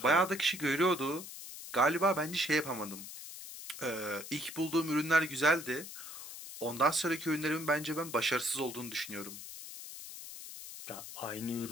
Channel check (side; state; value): left; noise; hiss, 11 dB below the sound